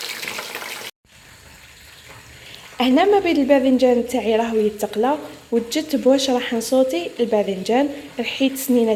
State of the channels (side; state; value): both; identical; correlation 1.00